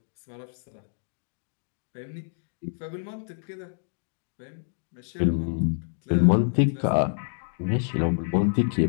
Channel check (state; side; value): silent; right; digital silence